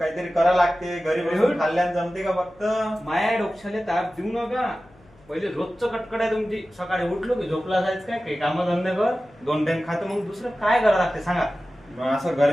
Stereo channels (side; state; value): left; noise; hum, 28 dB below the sound